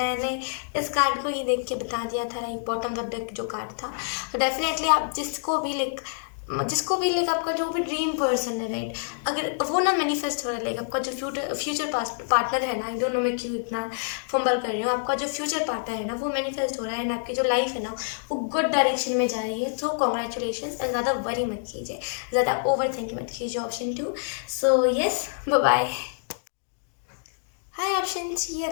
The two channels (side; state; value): right; silent; digital silence